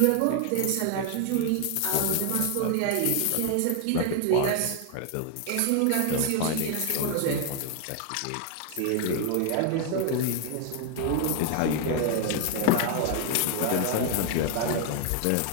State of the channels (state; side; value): different; both; correlation 0.00